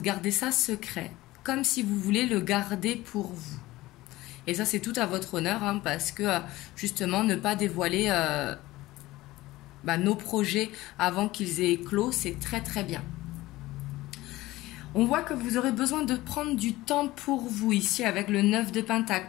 ça secret, comme si vous voulez le garder pour vous. Et ça, c'est tout à votre honneur, hein, parce que justement, ne pas dévoiler nos projets avant qu'ils aient éclos, c'est très très bien. On voit que vous aurez besoin de prendre du temps pour vous ici avec le 9 de pentacle,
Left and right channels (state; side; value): quieter; right; 18.0 dB